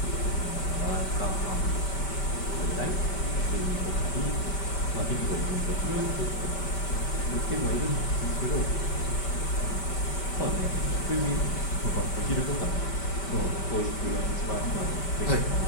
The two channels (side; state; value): right; late; 5.1 ms